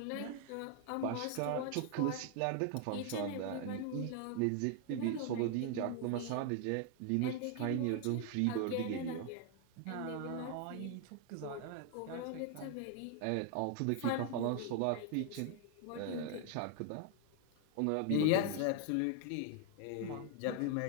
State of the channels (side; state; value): both; different; correlation 0.00